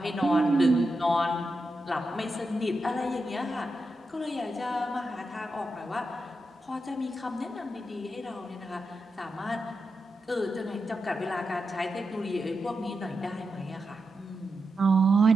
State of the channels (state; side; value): normal; both; correlation 0.87